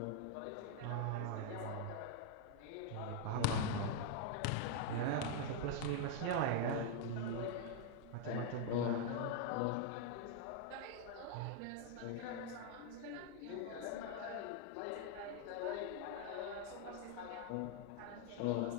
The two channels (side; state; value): both; different; correlation 0.00